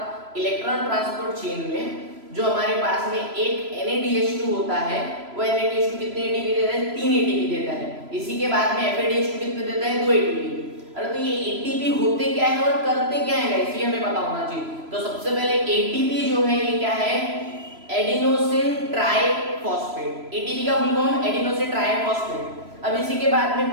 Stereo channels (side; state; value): left; late; 3.0 ms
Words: इलेक्ट्रॉन ट्रांसपोर्ट चेन में जो हमारे पास में एक NADH2 होता है वो NADH2 कितने ATP देता है? 3 ATP देता है। इसी के बाद में FADH2 कितने देता है? 2 ATP। अरे तो ये ATP होते क्या है और करते क्या है गाइस, ये हमें पता होना चाहिए। तो सबसे पहले ATP जो है ये क्या है? Adenosine triphosphate. ATP का फुल फॉर्म एडिनोसिन ट्राइफॉस्फेट। अब इसी के बाद में